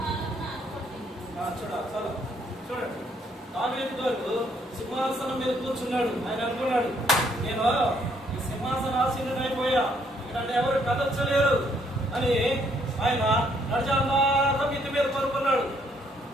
చూడండి, దావీదు గారు సింహాసనం మీద కూర్చున్నాడు. ఆయన అనుకున్నాడు, నేను ఈ సింహాసనాసీనుడైపోయా, ఇక్కడ ఎవరు కదర్చలేరు అని ఆయన నడిచాక మిద్ది మీద పడుకున్నాడు.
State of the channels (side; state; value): both; normal; correlation 0.69